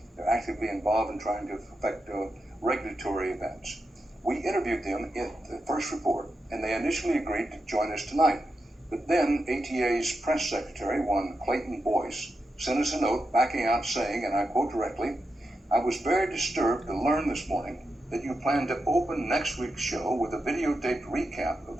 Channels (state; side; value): normal; both; correlation 0.87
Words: They're actively involved in trying to affect regulatory events. We interviewed them in the first report, and they initially agreed to join us tonight. But then ATA's press secretary, one Clayton Boyce, sent us a note backing out saying, and I quote directly, "I was very disturbed to learn this morning that you plan to open next week's show with a videotaped recap of